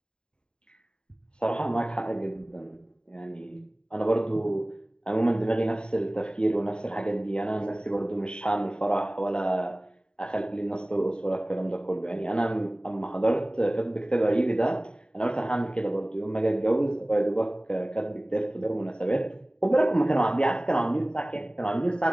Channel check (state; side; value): late; right; 0.049 ms